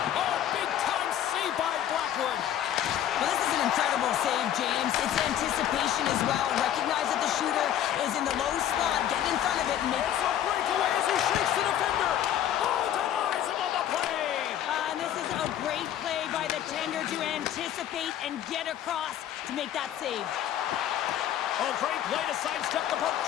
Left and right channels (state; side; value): quieter; right; 11.0 dB